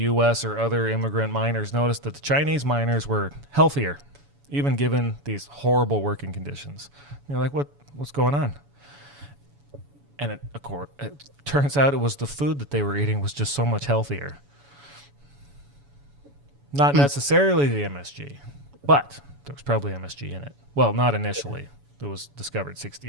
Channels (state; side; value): late; left; 7.0 ms